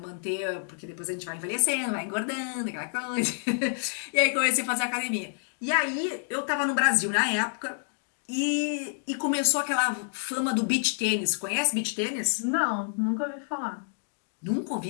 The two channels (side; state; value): right; silent; digital silence